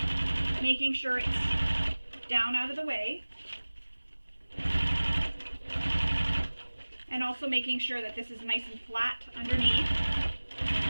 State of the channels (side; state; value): both; inverted; correlation -1.00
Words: making sure it's down out of the way. And also making sure that this is nice and flat underneath.